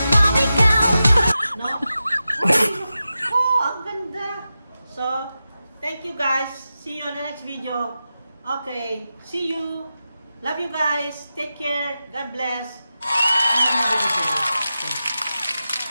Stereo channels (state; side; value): inverted; both; correlation -0.92